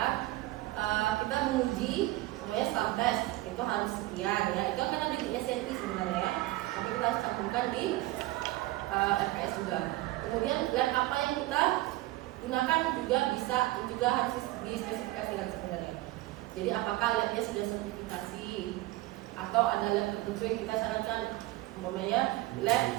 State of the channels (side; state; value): left; quieter; 18.1 dB